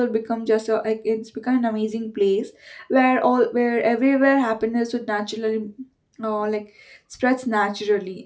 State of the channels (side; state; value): both; identical; correlation 1.00